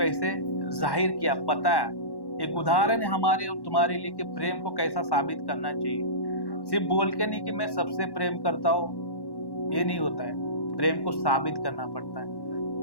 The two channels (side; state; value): right; late; 1.1 ms